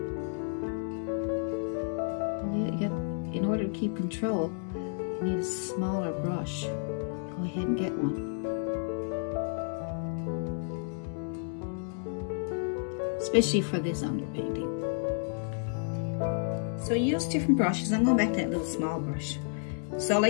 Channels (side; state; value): right; silent; 57 dB below the other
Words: to keep control, you need a smaller brush. Go ahead and get one. Especially for this underpainting. So use different brushes. I'm going back to that little small brush. So